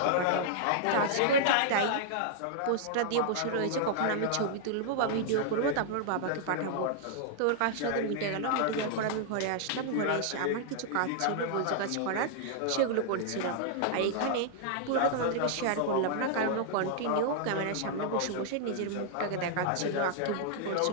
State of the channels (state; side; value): different; both; correlation -0.01